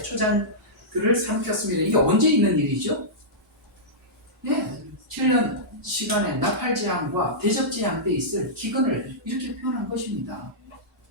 초장들을 삼켰습니다. 이게 언제 있는 일이죠? 네, 7년 시간에 나팔재앙과 대접재앙 때 있을 기근을 이렇게 표현한 것입니다.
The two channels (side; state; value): both; normal; correlation -0.14